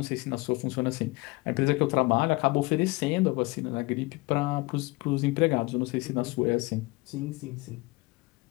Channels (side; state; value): right; quieter; 23.9 dB